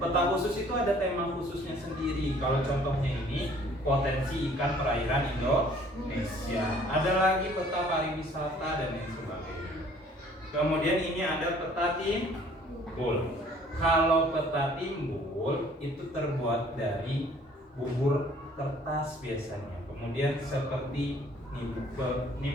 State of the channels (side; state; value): both; normal; correlation 0.56